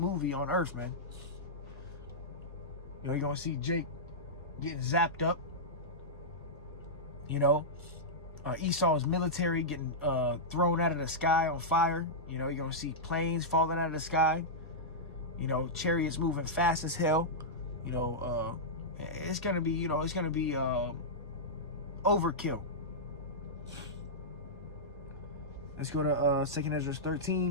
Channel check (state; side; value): normal; both; correlation -0.11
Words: on Earth, man. You know, you're going to see Jake getting zapped up. You know, Esau's military getting thrown out of the sky on fire. You know, you're going to see planes falling out of the sky. You know, chariots moving fast as hell. You know, it's going to be, you know, it's going to be overkill. Let's go to 2nd Ezra